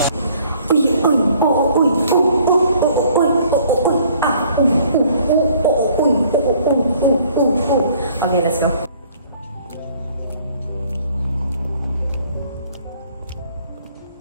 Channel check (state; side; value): inverted; both; correlation -0.58